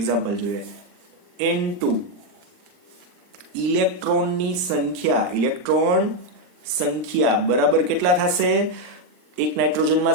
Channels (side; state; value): left; late; 39 ms